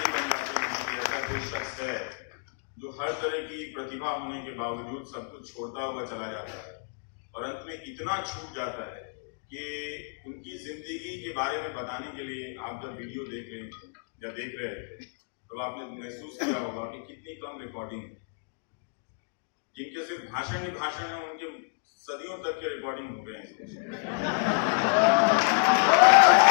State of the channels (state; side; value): silent; right; digital silence